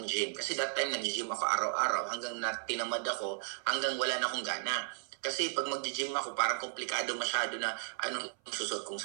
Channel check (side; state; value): left; silent; 55 dB below the other